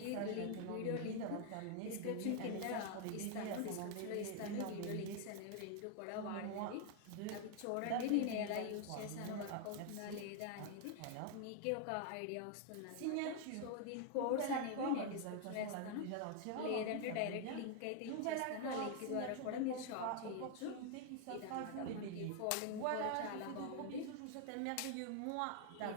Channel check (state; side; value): different; both; correlation 0.00